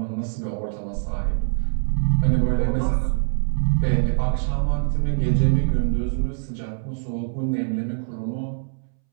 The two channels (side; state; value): left; silent; 63 dB below the other